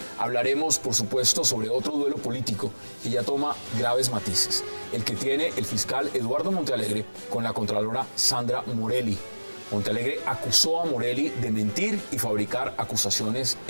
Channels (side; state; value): both; inverted; correlation -1.00